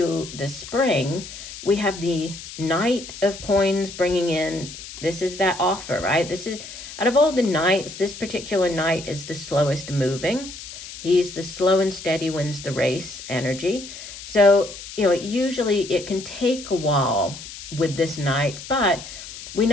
the spring, we have the Knight of Coins bringing in, this is that offer, right? This is, out of all the knights, this particular knight is the slowest moving. He's the slow and steady wins the race energy. So, usually it can take a while with this knight, but we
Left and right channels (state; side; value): noise; left; hiss, 13 dB below the sound